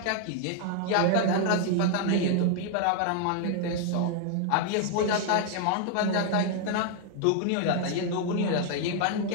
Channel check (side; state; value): both; different; correlation 0.00